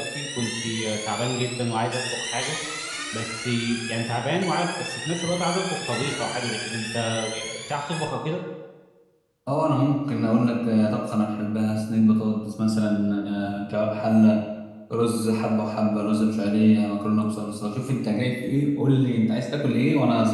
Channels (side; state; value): both; identical; correlation 1.00